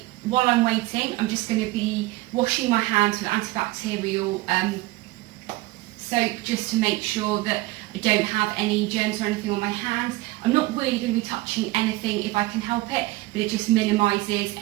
while I'm waiting, I'm just going to be washing my hands with antibacterial soap, just to make sure that I don't have any germs or anything on my hands. I'm not really going to be touching anything if I can help it, but it just minimises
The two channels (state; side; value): quieter; left; 19.8 dB